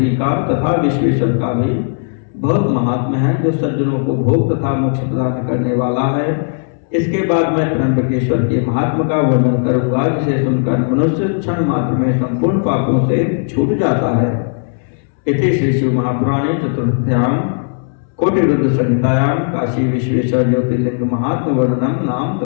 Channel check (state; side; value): silent; right; 69 dB below the other